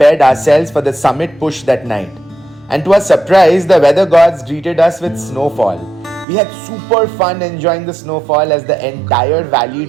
ourselves for the summit push that night. And to our surprise, the weather gods greeted us with snowfall. We had super fun enjoying the snowfall as the entire valley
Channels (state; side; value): drops out; left; at 6.2 s